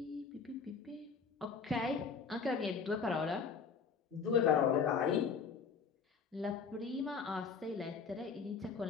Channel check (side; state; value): right; quieter; 5.7 dB